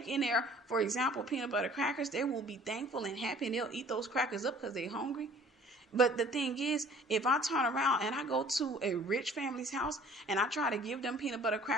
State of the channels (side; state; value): both; normal; correlation 0.51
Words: in there, for example, peanut butter crackers, they will be thankful and happy and they'll eat those crackers up because they're hungry. But the thing is, if I turn around and I go to a rich family's house and I try to give them peanut butter